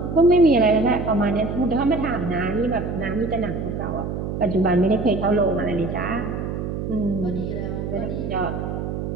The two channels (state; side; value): noise; right; hum, 4 dB below the sound